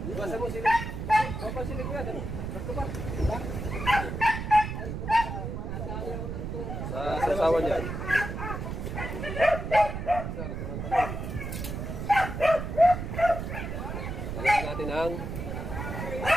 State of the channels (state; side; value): noise; right; rumble, 5 dB below the sound